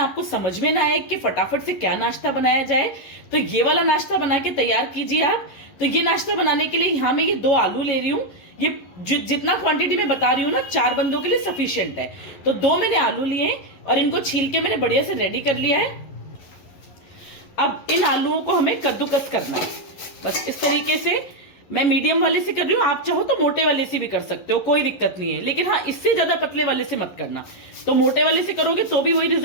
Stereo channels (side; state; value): right; late; 11 ms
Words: आपको समझ में ना आए कि फटाफट से क्या नाश्ता बनाया जाए, तो ये वाला नाश्ता बना के तैयार कीजिए आप। तो ये नाश्ता बनाने के लिए यहाँ मैं ये 2 आलू ले रही हूँ। ये जितना क्वांटिटी में बता रही हूँ ना, 4 बंदों के लिए सफिशियंट है। तो 2 मैंने आलू लिए और इनको छील के मैंने बढ़िया से रेडी कर लिया है। अब इन आलूओं को हमें कद्दूकस करना है, बस इस तरीके से। मैं मीडियम वाले से कर रही हूँ, आप चाहो तो मोटे वाले से भी कर सकते हो, कोई दिक्कत नहीं है। लेकिन हाँ, इससे ज्यादा पतले वाले से मत करना। तो मोटे वाले से करोगे तो भी वही